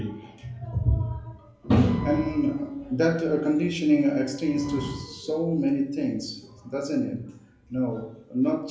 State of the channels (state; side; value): identical; both; correlation 1.00